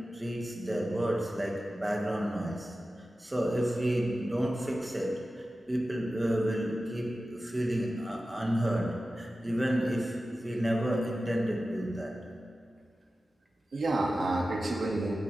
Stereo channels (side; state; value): both; normal; correlation 0.94